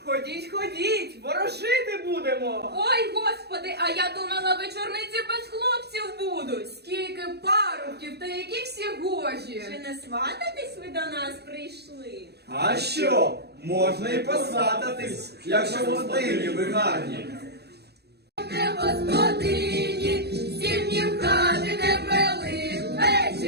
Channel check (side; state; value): left; late; 0.48 ms